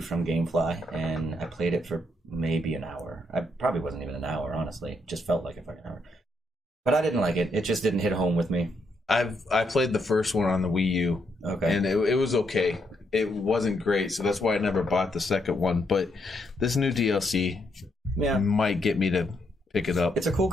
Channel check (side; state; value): both; normal; correlation 0.77